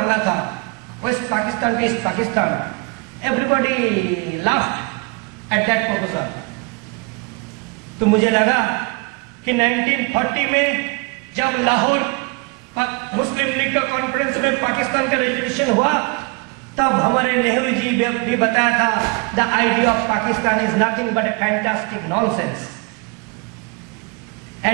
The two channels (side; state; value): left; quieter; 29.6 dB